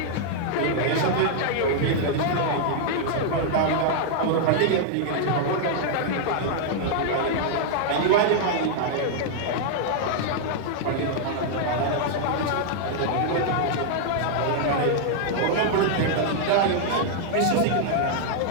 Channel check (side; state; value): both; different; correlation -0.01